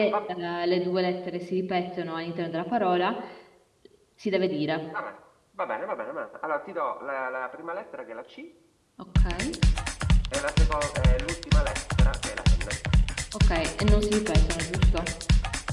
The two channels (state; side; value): identical; both; correlation 1.00